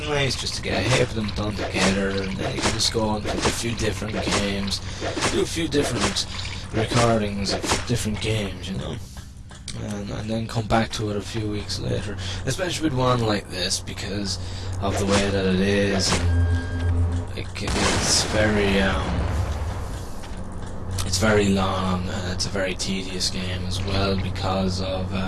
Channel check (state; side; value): identical; both; correlation 1.00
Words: nice just to get a heap of them done together, and then you can just go on with a few different games, do a few different recordings of different games, you know. And then come back to it a few weeks later, especially with one like this, because of the way that it is. It's very long, and it's a very tedious game as well because of